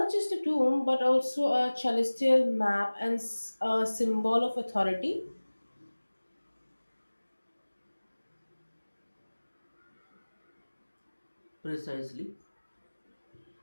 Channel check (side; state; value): both; inverted; correlation -1.00